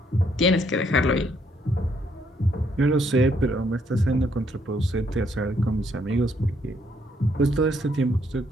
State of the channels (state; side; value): normal; both; correlation 0.71